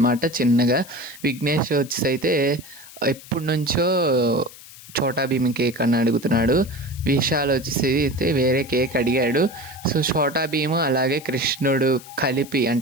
చిన్నగా. విఘ్నేష్ వచ్చేసి అయితే ఎప్పటి నుంచో చోటా భీమ్ కేక్ అని అడుగుతున్నాడు. విశాల్ వచ్చేసి అయితే వేరే కేక్ అడిగాడు. సో చోటా భీమ్ అలాగే కృష్ణుడు కలిపి,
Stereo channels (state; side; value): noise; left; hiss, 18 dB below the sound